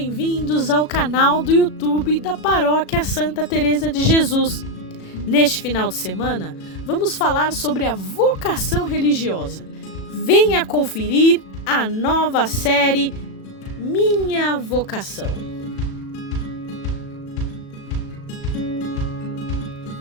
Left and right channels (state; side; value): late; right; 37 ms